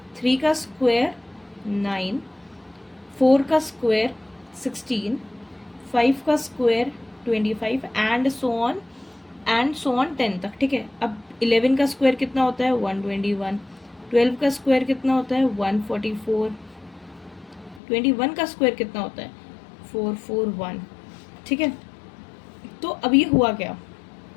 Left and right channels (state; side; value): drops out; right; at 17.8 s